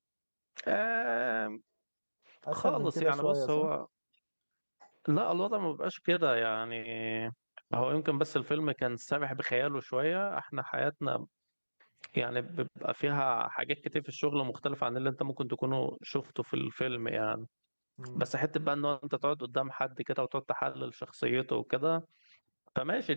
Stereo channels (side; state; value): both; inverted; correlation -1.00